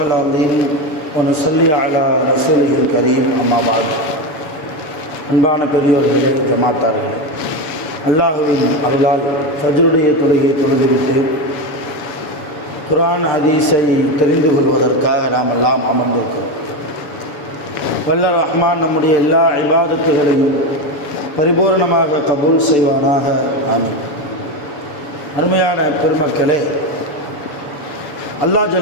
அல்-அலீம் வ நுஸல்லி அலா ரசூலிஹில் கரீம். அம்மா பாத். அன்பான பெரியோர்களே, ஜமாத்தார்களே, அல்லாஹுவின் அருளால் ஃபஜ்ருடைய தொழுகையை தொழுதுவிட்டு குர்ஆன் ஹதீஸை தெரிந்து கொள்வதற்காக நாம் எல்லாம் அமர்ந்திருக்கிறோம். வல்ல ரஹ்மான் நம்முடைய எல்லா இபாதத்துகளையும் பரிபூர்ணமாக கபூல் செய்வானாக. ஆமீன். அருமையான பெருமக்களே, அல்லாஹ்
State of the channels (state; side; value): late; right; 7.1 ms